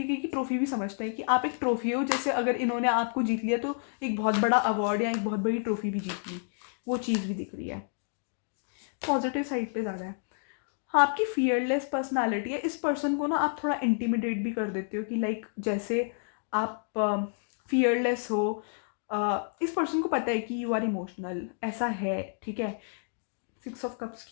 की ट्रॉफी भी समझते हैं कि आप एक ट्रॉफी हो. जैसे अगर इन्होंने आपको जीत लिया तो एक बहुत बड़ा अवार्ड या एक बहुत बड़ी ट्रॉफी भी जीत ली. वो चीज़ भी दिख रही है. पॉजिटिव साइड पे ज़्यादा है. हाँ, आपकी फियरलेस पर्सनालिटी है. इस पर्सन को ना आप थोड़ा इंटिमिडेट भी कर देते हो कि लाइक जैसे आप फियरलेस हो. इस पर्सन को पता है कि यू आर इमोशनल, ऐसा है, ठीक है. 6 ऑफ कप्स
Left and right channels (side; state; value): right; silent; 58 dB below the other